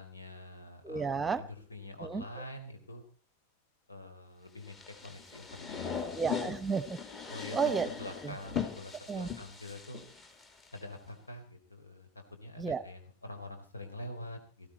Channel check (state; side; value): normal; both; correlation 0.46